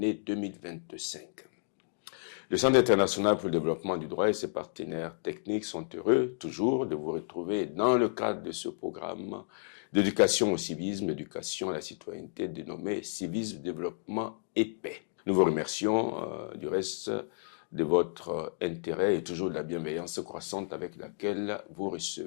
2025. Le Centre international pour le développement du droit et ses partenaires techniques sont heureux toujours de vous retrouver dans le cadre de ce programme d'éducation au civisme, éducation à la citoyenneté dénommé Civisme, Développement et Paix. Nous vous remercions du reste de votre intérêt et toujours de la bienveillance croissante avec laquelle vous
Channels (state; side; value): silent; right; digital silence